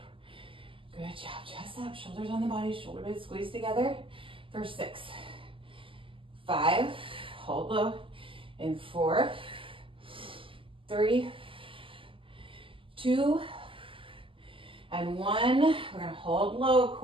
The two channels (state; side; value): late; left; 0.25 ms